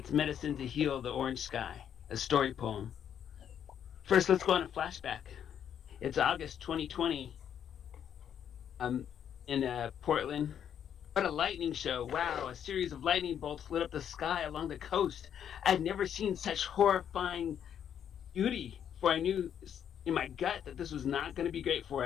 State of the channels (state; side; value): quieter; right; 9.0 dB